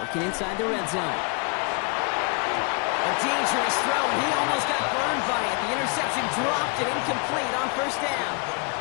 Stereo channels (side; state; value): right; quieter; 33.8 dB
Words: inside the red zone. A dangerous throw, and he almost got burned by it. The interception dropped and incomplete on first down.